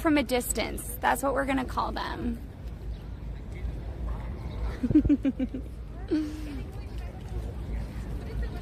a distance. That's what we're gonna call them.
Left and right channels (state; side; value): identical; both; correlation 1.00